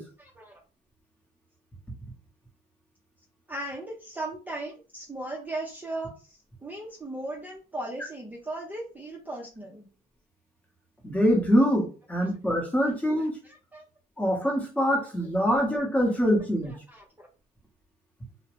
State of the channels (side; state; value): both; normal; correlation 0.80